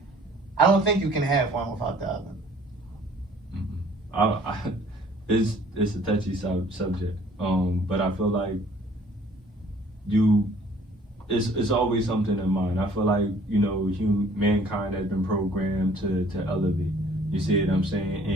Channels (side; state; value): both; normal; correlation 0.56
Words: I don't think you can have one without the other. It's a touchy subject, but I feel like it's always something in mind. I feel like, mankind has been programmed to elevate. You see what I'm saying?